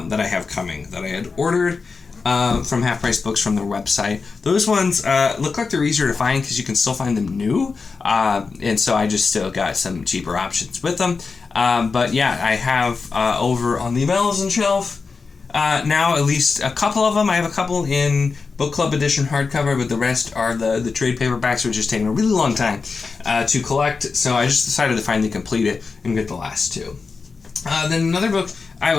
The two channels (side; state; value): right; quieter; 4.6 dB